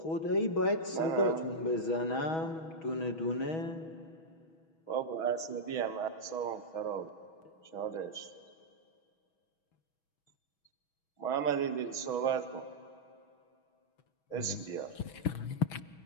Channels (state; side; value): late; right; 6.2 ms